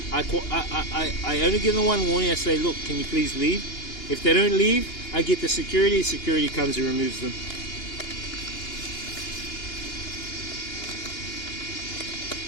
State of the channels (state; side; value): late; right; 2.8 ms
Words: I only give them one warning. I say, look, can you please leave? If they don't leave, I get the security. Security comes and removes them.